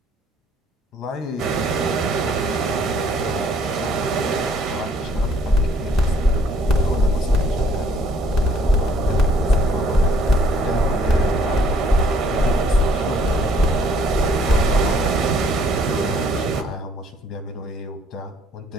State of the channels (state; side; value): normal; both; correlation 0.62